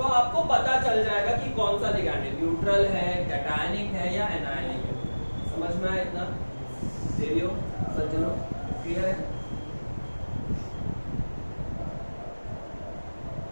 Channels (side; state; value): both; inverted; correlation -1.00